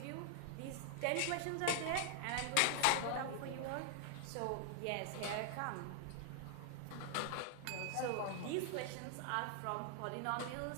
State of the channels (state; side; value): different; both; correlation 0.00